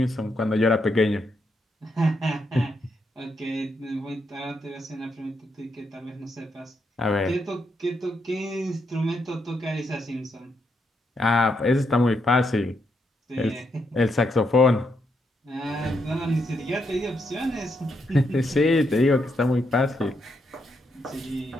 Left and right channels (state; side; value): normal; both; correlation 0.79